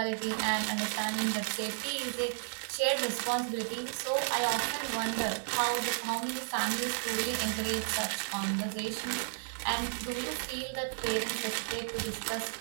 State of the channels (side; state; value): left; silent; digital silence